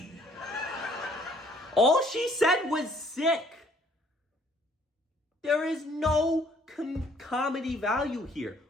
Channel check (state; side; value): normal; both; correlation 0.61